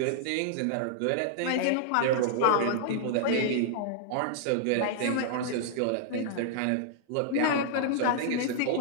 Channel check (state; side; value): different; both; correlation -0.01